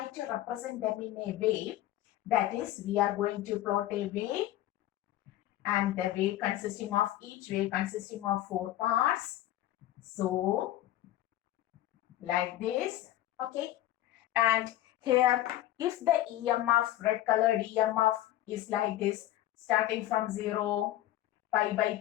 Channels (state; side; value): quieter; right; 14.0 dB